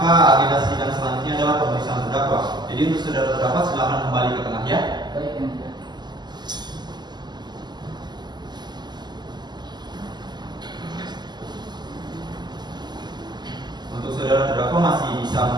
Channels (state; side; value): late; left; 0.21 ms